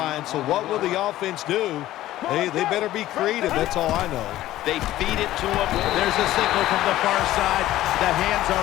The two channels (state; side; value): quieter; right; 14.7 dB